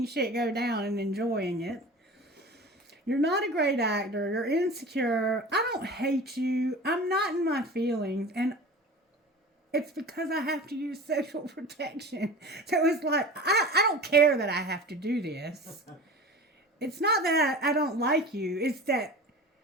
shit go down and enjoying it. You're not a great actor. You're insecure. I don't hate you. I'm not in my feelings. And it's because I have to use sexual protection. So it's like, I don't care that I have to do this. It's not that I don't like you. It's that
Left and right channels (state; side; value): normal; both; correlation 0.36